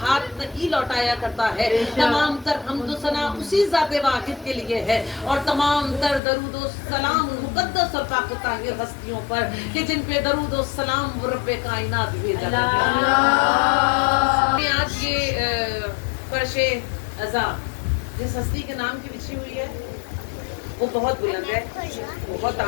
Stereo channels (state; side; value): drops out; right; at 6.2 s